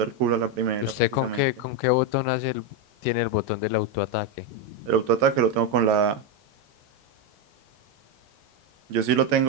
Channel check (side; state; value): left; late; 10 ms